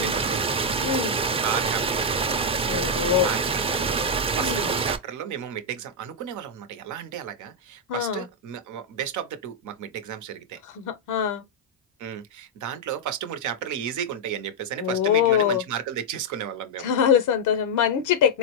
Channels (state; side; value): normal; both; correlation -0.02